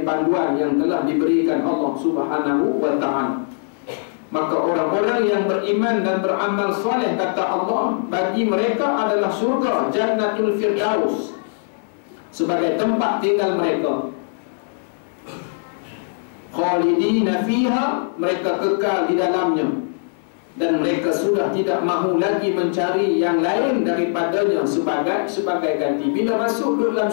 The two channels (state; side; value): silent; right; digital silence